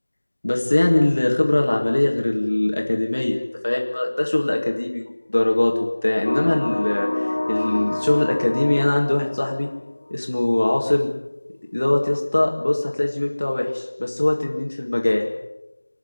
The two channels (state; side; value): inverted; both; correlation -1.00